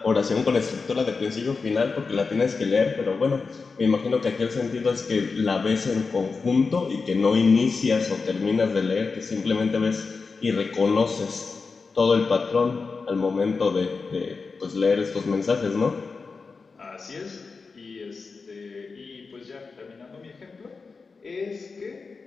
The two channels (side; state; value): right; quieter; 4.6 dB